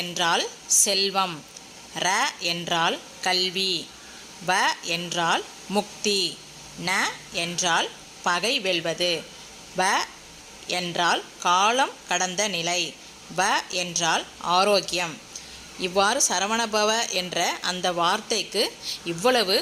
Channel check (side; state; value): both; identical; correlation 1.00